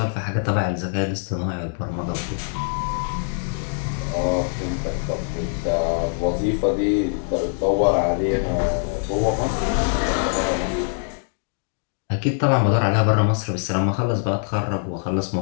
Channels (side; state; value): right; silent; 63 dB below the other